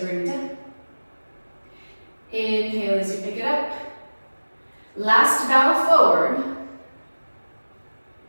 bring it down. Inhale as you pick it up. Last bow forward.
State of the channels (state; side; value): inverted; both; correlation -1.00